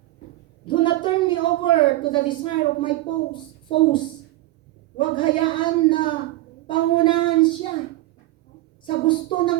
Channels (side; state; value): left; quieter; 17.1 dB